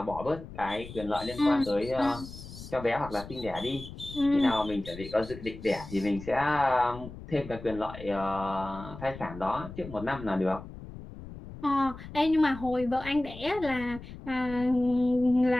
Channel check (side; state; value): left; noise; rumble, 13 dB below the sound